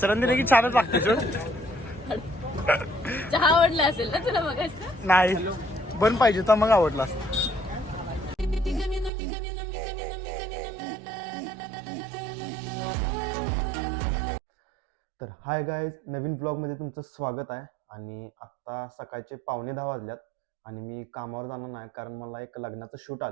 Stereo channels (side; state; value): left; drops out; at 9.1 s